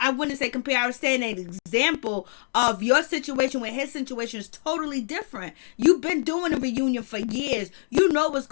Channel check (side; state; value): right; silent; digital silence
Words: wouldn't say compare, I was saying an example of your situation when his situation is totally different. You've been doing a reunion for years. You know what's